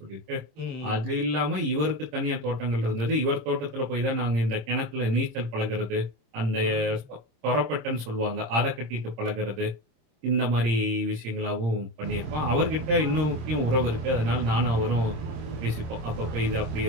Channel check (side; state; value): left; late; 26 ms